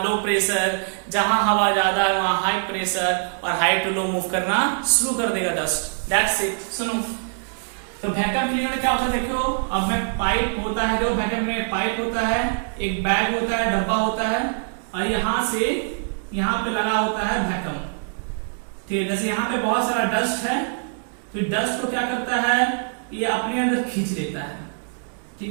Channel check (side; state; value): left; silent; digital silence